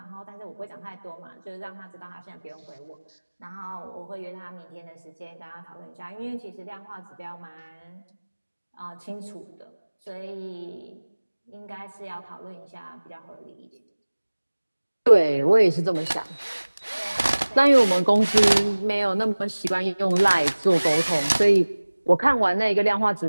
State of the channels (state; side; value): inverted; both; correlation -1.00